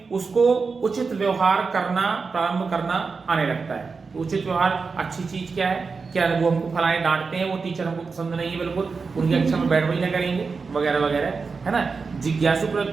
उसको उचित व्यवहार करना प्रारंभ करना आने लगता है। तो उचित व्यवहार, अच्छी चीज क्या है, क्या वो हमको फलाने डांटते हैं, वो टीचर हमको पसंद नहीं है, बिल्कुल उनकी कक्षा में बैठ ना करेंगे, वगैरह वगैरह, है ना। जिज्ञासु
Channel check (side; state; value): left; quieter; 4.7 dB